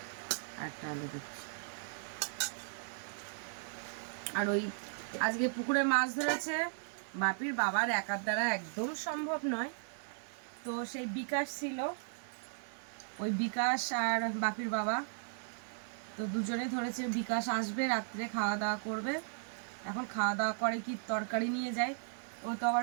একটা আলু দিচ্ছি। আর ওই আজকে পুকুরে মাছ ধরেছে, বাপির বাবার একার দ্বারা একদম সম্ভব নয়, তো সেই বিকাশ ছিল, ওই বিকাশ আর বাপির বাবা তো দুজনে ধরেছে। বিকাশ আসবে রাত্রে, খাওয়া দাওয়া করবে, এখন খাওয়া দাওয়া করে কি তরকারি নিয়ে যায়, ও তো আবার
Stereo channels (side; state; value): left; silent; digital silence